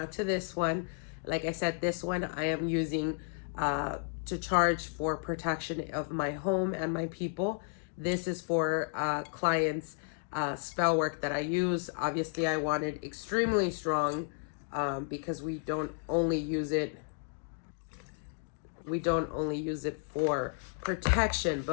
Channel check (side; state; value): right; silent; 56 dB below the other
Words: to this one. Like I said, this one I am using to charge for protection of my home and my people. This is for clients' spell work that I use. Obviously, I want it extremely strong because we don't only use it for protection,